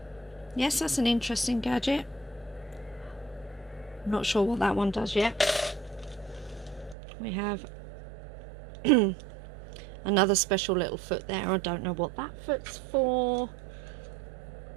Yes, that's an interesting gadget. I'm not sure what that one does yet. We have another special little foot there. I don't know what that foot's for.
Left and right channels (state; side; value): drops out; left; at 7.0 s